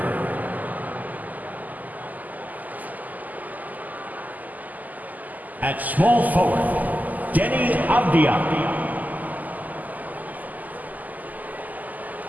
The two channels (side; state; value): left; late; 0.081 ms